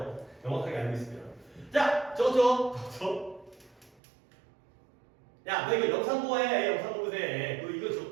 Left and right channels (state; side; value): drops out; left; at 4.0 s